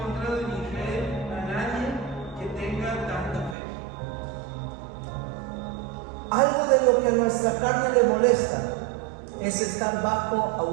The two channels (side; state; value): left; drops out; at 3.6 s